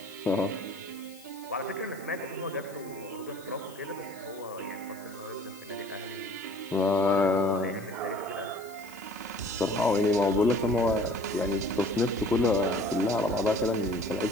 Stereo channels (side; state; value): left; noise; hiss, 21 dB below the sound